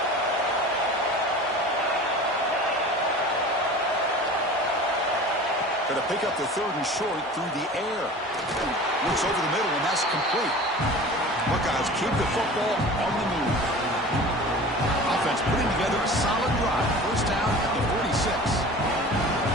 Going to pick up the third and short through the air. Looks over the middle, and that's complete. Buckeyes keep the football on the move. Offense putting together a solid drive. First down at the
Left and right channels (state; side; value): normal; both; correlation 0.39